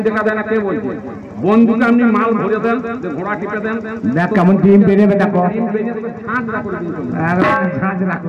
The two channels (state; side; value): identical; both; correlation 1.00